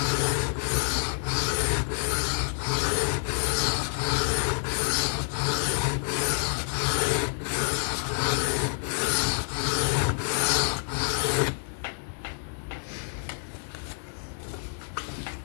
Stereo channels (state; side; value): silent; right; 60 dB below the other